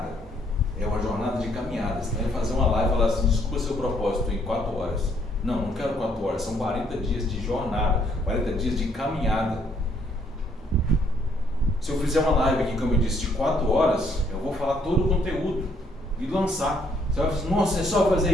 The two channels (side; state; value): both; normal; correlation 0.68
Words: É uma jornada de caminhada. Você vai fazer uma live e falar assim, desculpa seu propósito em 4 horas. Não quero 4 horas, são 40 dias de jornada, 40 dias de caminhada. Se eu fizer uma live aqui, como eu disse, de 4 horas, eu vou falar todo o conteúdo e lançar. Você vai falar, nossa, é só fazer